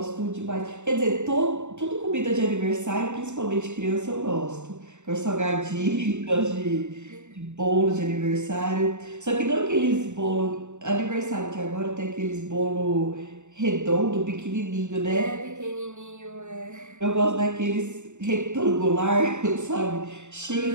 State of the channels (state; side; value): late; left; 0.84 ms